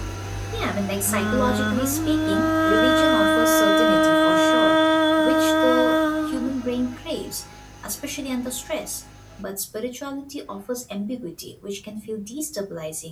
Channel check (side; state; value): both; identical; correlation 1.00